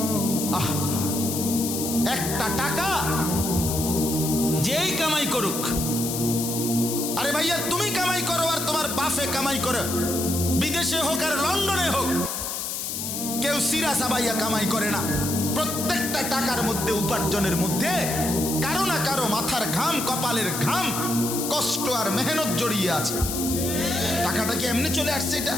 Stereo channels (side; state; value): left; noise; hiss, 4 dB below the sound